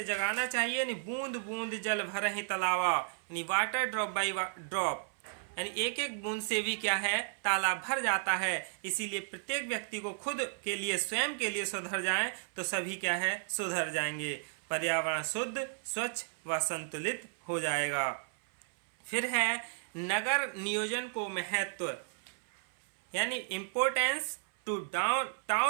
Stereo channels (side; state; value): left; silent; 55 dB below the other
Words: जगाना चाहिए। यानी बूंद बूंद जल भर ही तलावा, यानी वाटर ड्रॉप बाई ड्रॉप, यानी एक एक बूंद से भी क्या है, तालाब भर जाता है। इसीलिए प्रत्येक व्यक्ति को खुद के लिए स्वयं के लिए सुधर जाए तो सभी क्या है, सुधर जाएंगे। पर्यावरण शुद्ध स्वच्छ व संतुलित हो जाएगा। फिर है नगर नियोजन को महत्व, यानी इम्पोर्टेंस टू